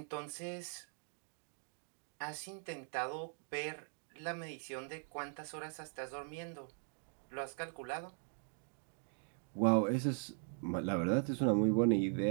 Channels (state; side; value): silent; left; 51 dB below the other